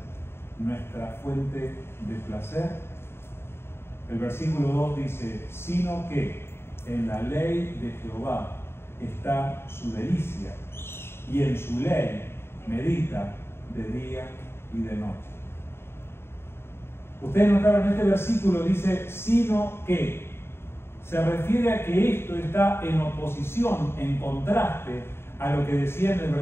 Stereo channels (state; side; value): late; right; 0.12 ms